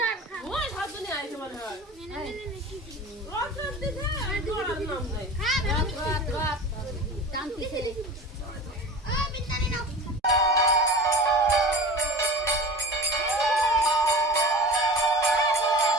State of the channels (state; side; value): normal; both; correlation 0.35